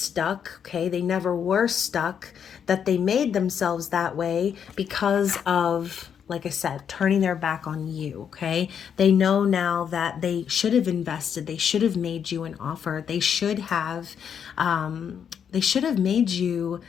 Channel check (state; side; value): quieter; right; 7.9 dB